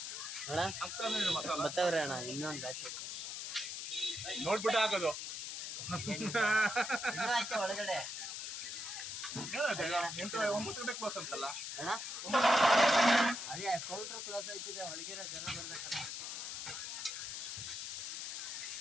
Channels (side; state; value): left; noise; hiss, 5 dB below the sound